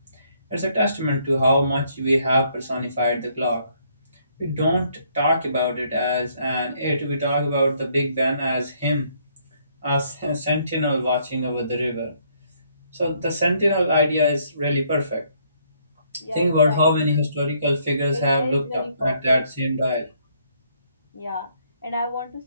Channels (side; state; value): both; inverted; correlation -0.68